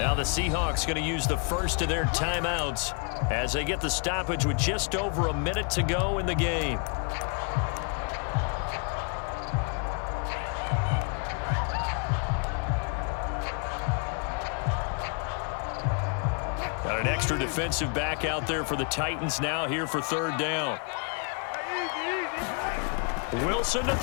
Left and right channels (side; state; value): right; quieter; 37.6 dB